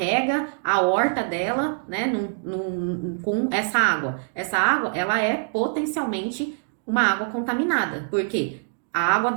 a horta dela, né, com essa água. Essa água, ela é potencialmente uma água contaminada. Por quê? a água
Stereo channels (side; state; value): left; silent; digital silence